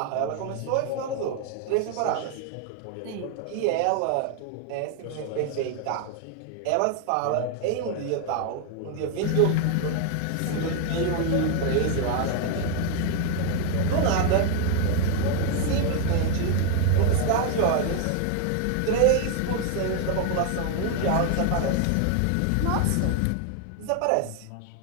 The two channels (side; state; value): both; different; correlation 0.00